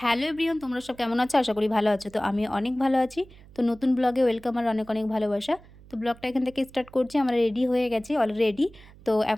হ্যালো এভরিওয়ান, তোমরা সব কেমন আছো? আশা করি ভালো আছো। তো আমি অনেক ভালো আছি। তো নতুন ব্লগে ওয়েলকাম আর অনেক অনেক ভালোবাসা। তো ব্লগটা এখান থেকে স্টার্ট করছি। আমরা রেডি হয়ে গেছি অলরেডি। তো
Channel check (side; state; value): right; noise; hum, 23 dB below the sound